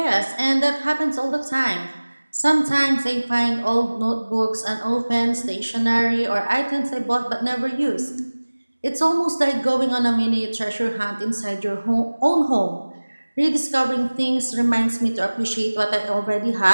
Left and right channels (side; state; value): both; inverted; correlation -1.00